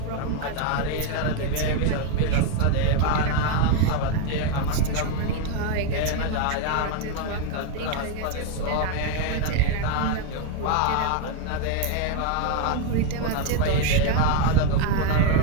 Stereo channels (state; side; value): different; both; correlation 0.01